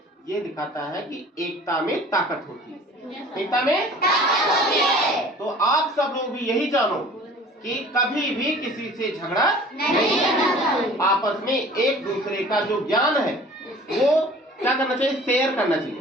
ये दिखाता है कि एकता में ताकत होती है। एकता में ताकत होती है। तो आप सब लोग भी यही जानो कि कभी भी किसी से झगड़ा नहीं करना चाहिए। आपस में एक दूसरे का जो ज्ञान है वो क्या करना चाहिए, शेयर करना चाहिए।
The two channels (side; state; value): both; normal; correlation 0.46